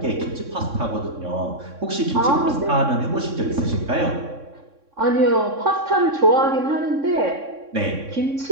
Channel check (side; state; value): left; late; 3.6 ms